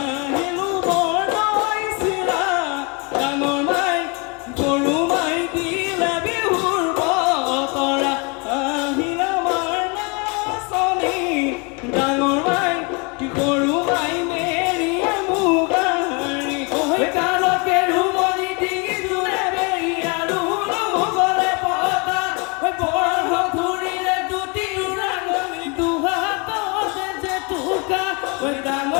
বৰদৈ চিৰা ডাঙৰ মাই গৰু মাই দিলে বিহুৰ বতৰা আহিল আমাৰ নাচনী ডাঙৰ মাই গৰু মাই মেৰিয়ে মুগাৰী কালকে ৰুমনি ডিঙি জোৰে বেৰি আৰু গলে পতা বৰ ধুৰিলে দুটি ৰাঙনি দুহাততে যে টুকা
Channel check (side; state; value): right; quieter; 31.4 dB